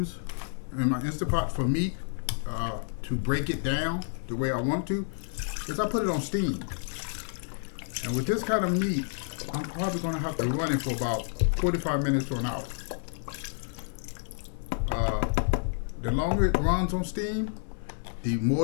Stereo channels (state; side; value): silent; right; 58 dB below the other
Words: in my Instapot for meat to break it down the way I want to is I put it on steam. And with this kind of meat, I'm probably going to have to run it for about 45 minutes to an hour. The longer it runs on steam, the